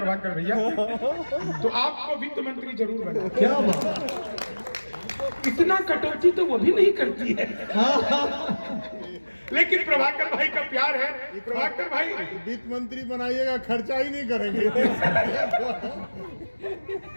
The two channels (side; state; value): both; inverted; correlation -1.00